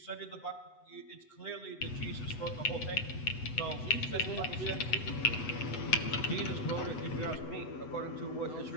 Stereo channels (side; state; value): right; late; 8.0 ms